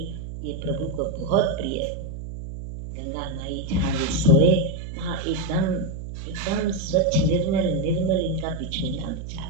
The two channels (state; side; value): noise; right; hum, 8 dB below the sound